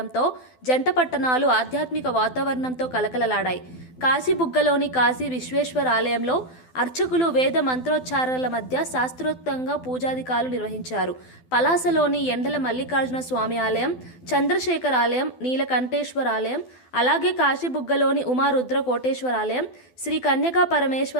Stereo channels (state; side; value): late; right; 12 ms